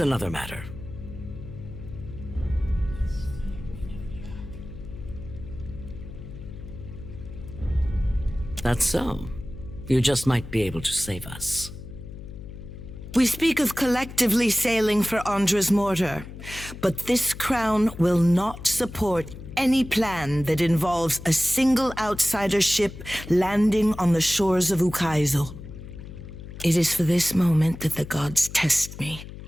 matter. That's so. You just might be able to save us. We speak of collectively sailing for Andra's mortar, but this crown will not support any plan that involves a single outsider ship landing on the shores of Ukaizo. It is for this moment that the gods test me.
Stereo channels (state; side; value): noise; left; hum, 13 dB below the sound